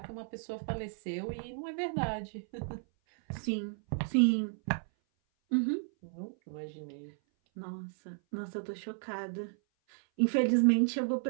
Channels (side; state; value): left; silent; 55 dB below the other